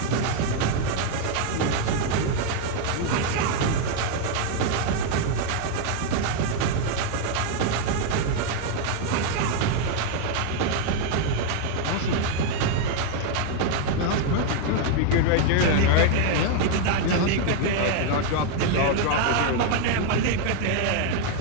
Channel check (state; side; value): different; both; correlation 0.00